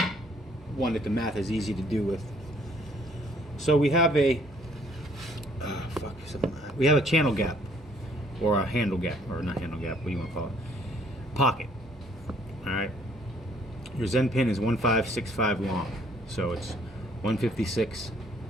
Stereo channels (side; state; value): both; normal; correlation 0.62